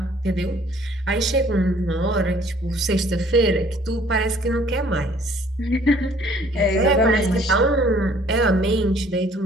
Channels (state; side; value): normal; both; correlation 0.57